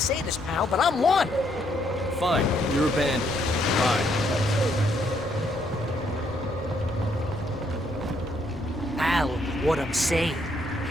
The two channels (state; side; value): normal; both; correlation 0.72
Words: this, pal, but I'm one. Fine. You're abandoned. Fine. Al, what I'm saying